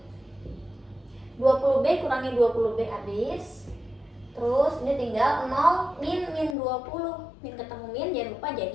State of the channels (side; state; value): right; drops out; at 6.6 s